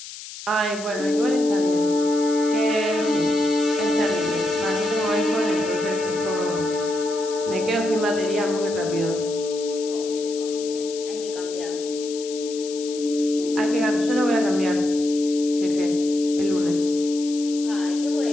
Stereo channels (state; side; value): noise; left; hiss, 13 dB below the sound